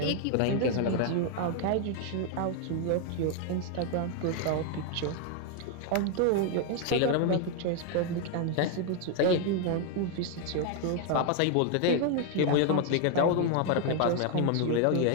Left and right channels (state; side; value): different; both; correlation 0.00